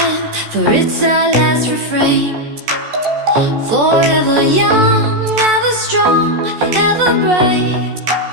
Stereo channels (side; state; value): left; late; 14 ms